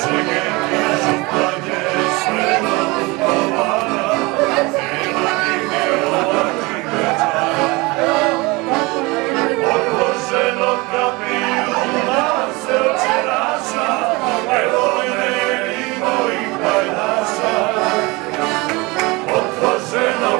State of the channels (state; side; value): quieter; left; 24.5 dB